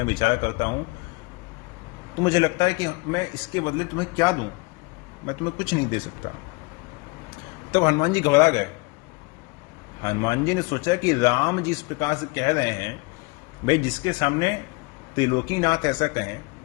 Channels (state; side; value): quieter; right; 27.1 dB